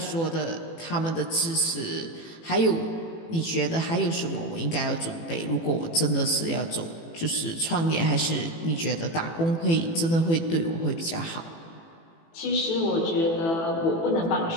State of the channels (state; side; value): late; right; 18 ms